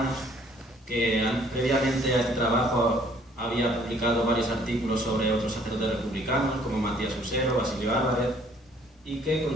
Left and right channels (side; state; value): both; normal; correlation 0.60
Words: que previamente a este trabajo había publicado varios artículos sobre otros sacerdotes republicanos, como Matías Usero, Basilio Álvarez, y que